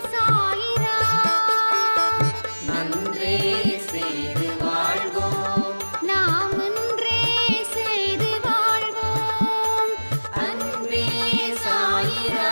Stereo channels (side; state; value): both; inverted; correlation -1.00